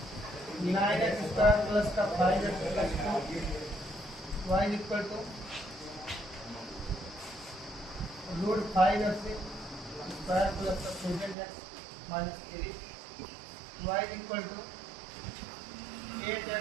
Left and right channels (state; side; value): drops out; left; at 11.4 s